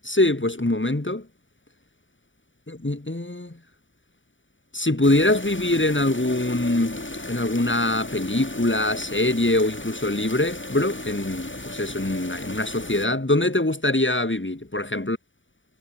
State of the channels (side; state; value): right; late; 0.56 ms